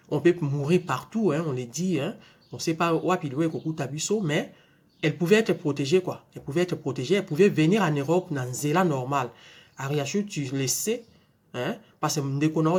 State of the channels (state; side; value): identical; both; correlation 1.00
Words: On peut mourir partout, hein, on le dit. Hein. On ne sait pas où il Koku Tabiso, mais elle pouvait être protégée, quoi. Elle pouvait être protégée. Elle pouvait venir en Europe dans un zéla normal. Ariachu, tu le sais, hein, parce que nous n'avons